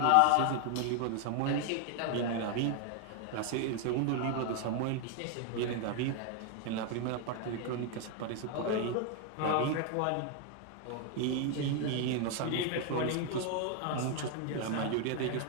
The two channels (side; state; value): both; different; correlation 0.00